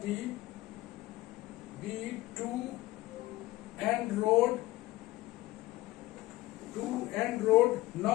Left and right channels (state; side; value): quieter; right; 17.8 dB